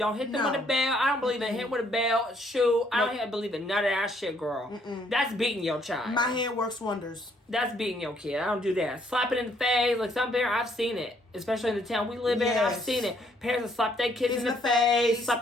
hit them with a bell. I don't believe in hitting with a bell, shoe. I don't believe in none of that shit, girl. That's beating your child. My hand works wonders. That's beating your kid. I don't do that. Slap it in the face. Like some parents, I've seen it. Especially in the town we live in, I've seen it. Parents will slap their kids in the face,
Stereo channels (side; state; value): both; normal; correlation 0.67